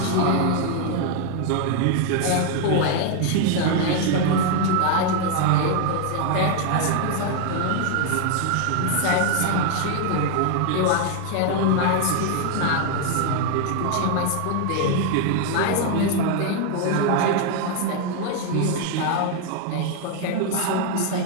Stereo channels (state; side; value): different; both; correlation 0.00